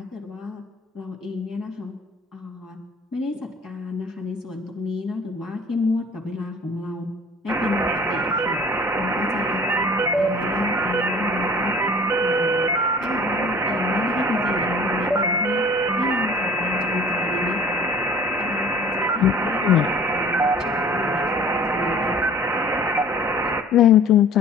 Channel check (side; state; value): both; normal; correlation 0.48